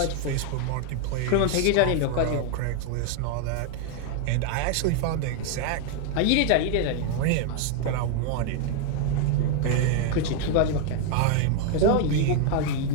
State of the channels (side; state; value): both; different; correlation 0.00